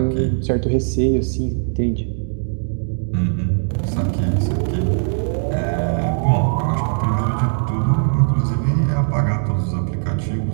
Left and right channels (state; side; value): silent; left; digital silence